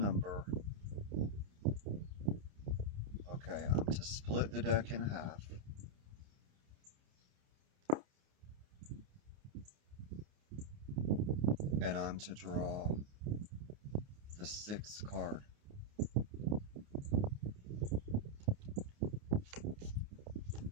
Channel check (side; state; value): left; late; 29 ms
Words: Okay, I'm to split the deck in half. And I'm to draw the 6th card.